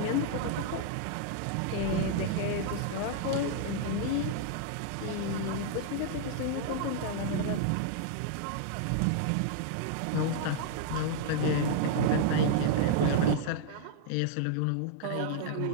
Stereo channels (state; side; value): different; both; correlation -0.01